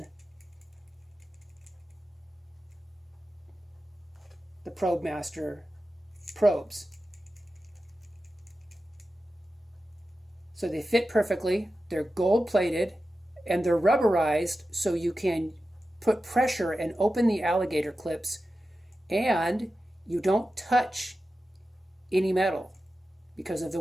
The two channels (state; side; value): normal; both; correlation 0.93